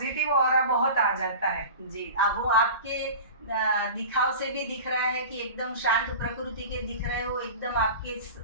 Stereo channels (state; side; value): inverted; both; correlation -0.35